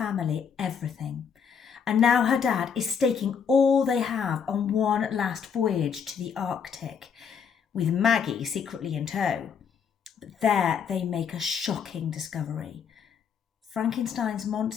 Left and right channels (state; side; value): quieter; right; 6.8 dB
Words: everything, and now her dad is staking all they have on one last voyage to the Arctic, with Maggie secretly in tow. But there they make a shocking discovery. Frankenstein's